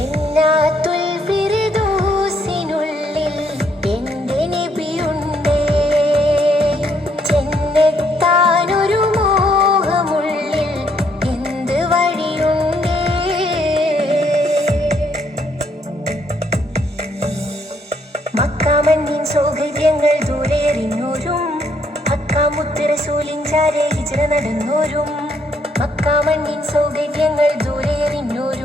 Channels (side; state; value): both; normal; correlation 0.71